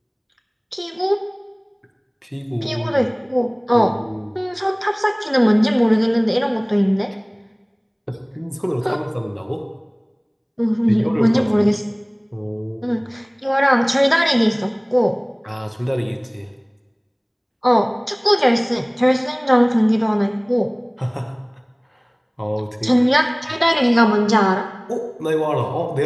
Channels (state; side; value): identical; both; correlation 1.00